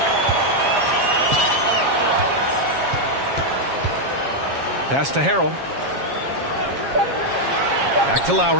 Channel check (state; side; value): late; left; 7.3 ms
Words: Pass to Harrell. Back to